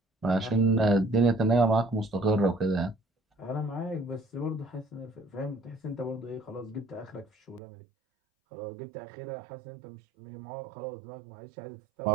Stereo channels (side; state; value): left; drops out; at 7.6 s